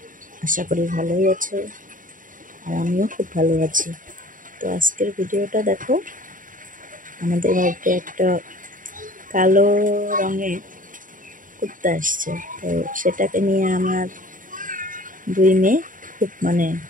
আশা করি ভালোই আছো। আর আমিও খুব ভালো আছি। তো আজকের ভিডিওটা দেখো, আমাদের বাড়িতে একটা কালো রঙের কুত্তা এসছে। তো সেটাকে নিয়ে আমার দুই মেয়ে খুব মানে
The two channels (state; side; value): late; left; 0.39 ms